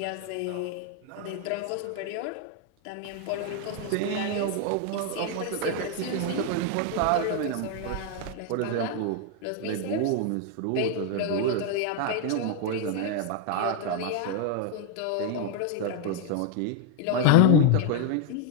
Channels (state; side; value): different; both; correlation 0.01